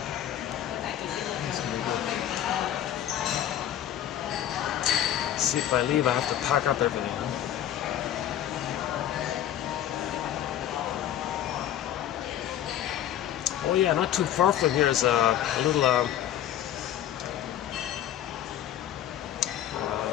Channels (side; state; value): right; quieter; 11.2 dB